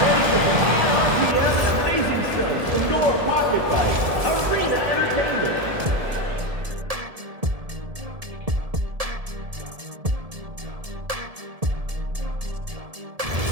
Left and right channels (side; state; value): left; late; 1.7 ms